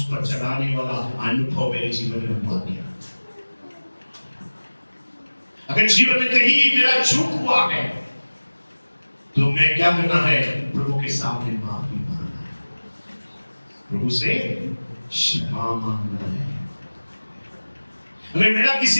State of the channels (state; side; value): inverted; both; correlation -1.00